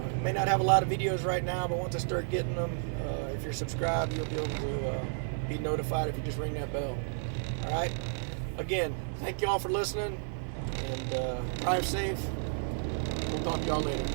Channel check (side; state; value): left; silent; 56 dB below the other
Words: May not have a lot of videos right now, but once I start getting them, if you're subscribed, you'll be able to be notified if you just ring that bell. All right. Again, thank you all for listening, and drive safe. We'll talk to y'all later.